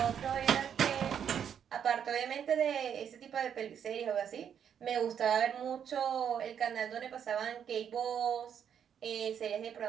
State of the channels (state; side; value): quieter; left; 8.4 dB